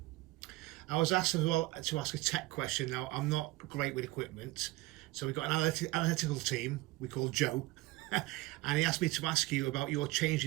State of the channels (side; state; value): left; quieter; 19.6 dB